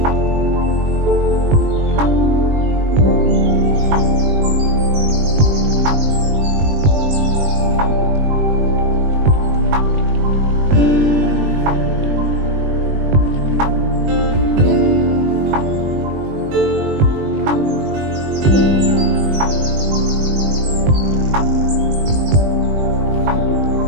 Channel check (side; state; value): left; late; 20 ms